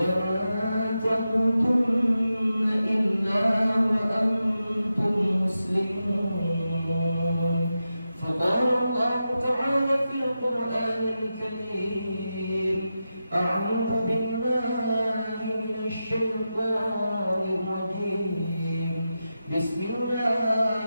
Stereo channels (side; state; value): both; inverted; correlation -0.90